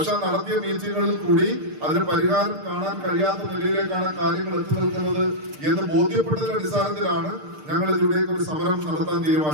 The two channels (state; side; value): late; left; 6.6 ms